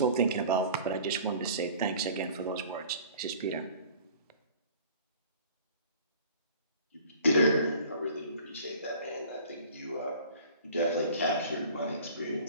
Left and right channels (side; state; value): both; inverted; correlation -0.46